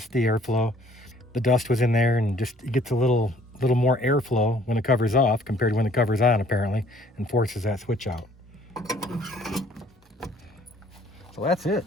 the airflow. The dust was in there, and just it gets a little more airflow when the cover's off compared to when the cover's on, apparently, and forces that switch out. So that's it.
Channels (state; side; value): normal; both; correlation 0.59